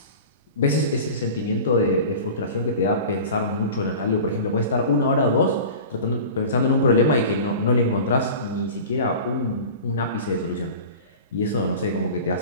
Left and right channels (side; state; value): both; inverted; correlation -0.36